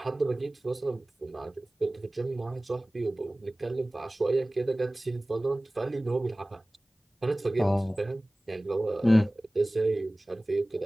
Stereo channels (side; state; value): both; normal; correlation 0.98